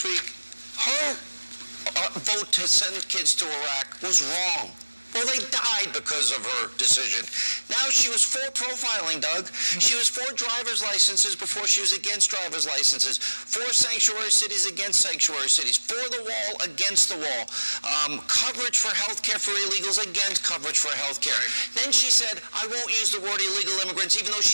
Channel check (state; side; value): inverted; both; correlation -1.00